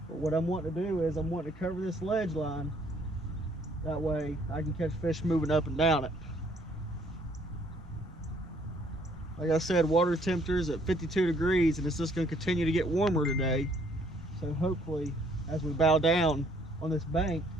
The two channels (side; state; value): both; normal; correlation 0.64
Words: But what I'm wanting to do is I'm wanting to cover this ledge line. That way I can catch fish moving up and down it. Like I said, water temperature is at 52 degrees and it's just going to continue to get warmer today. So hopefully as we bow down on this bank,